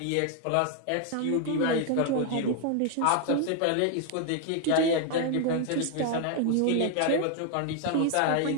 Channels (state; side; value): different; both; correlation 0.00